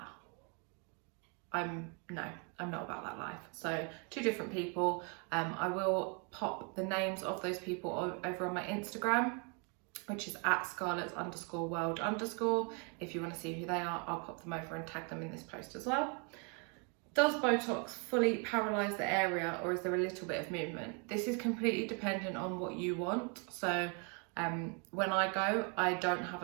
I'm not about that life. So two different people. I will pop the names of those people over on my Instagram, which is at scarlets_world_. If you want to see who they are, I'll pop them over and tag them in this post as well. Does Botox fully paralyze the area, or is there a little bit of movement? This is completely dependent on what you want. So when I go, I don't have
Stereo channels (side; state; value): left; quieter; 35.7 dB